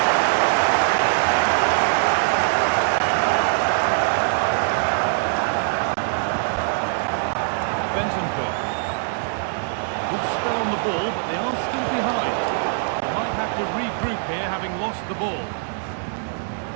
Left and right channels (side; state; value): left; silent; digital silence